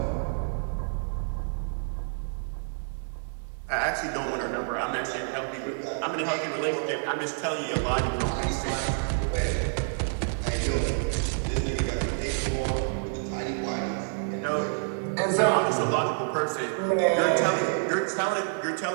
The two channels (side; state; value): left; silent; digital silence